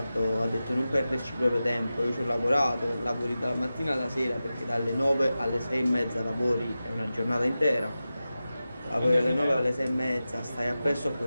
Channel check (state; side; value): inverted; both; correlation -0.94